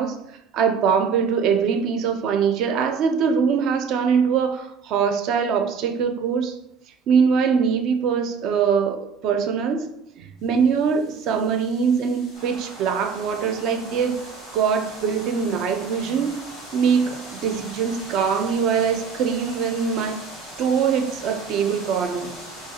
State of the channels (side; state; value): left; quieter; 6.1 dB